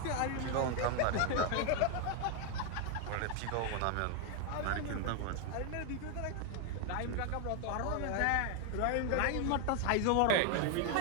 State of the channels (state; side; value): different; both; correlation 0.01